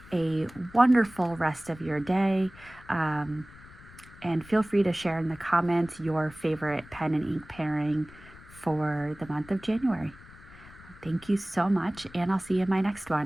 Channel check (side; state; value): left; noise; rumble, 20 dB below the sound